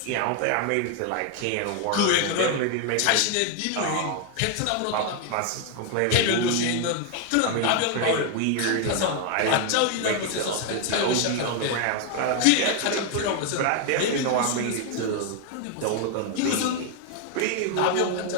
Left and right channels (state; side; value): different; both; correlation 0.01